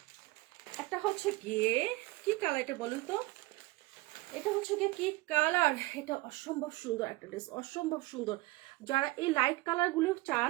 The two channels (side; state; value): left; quieter; 21.0 dB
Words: একটা হচ্ছে গিয়ে কি কালার, এটা বলুন তো, এটা হচ্ছে গিয়ে কি কালার, এটা অসম্ভব সুন্দর একটা ড্রেস, অসম্ভব সুন্দর। যারা এই লাইট কালার গুলো